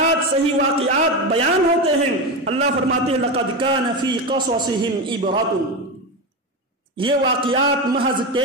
صحیح واقعات بیان ہوتے ہیں، اللہ فرماتے ہیں لقد كان في قصصهم عبرة. یہ واقعات محض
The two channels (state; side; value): normal; both; correlation 0.17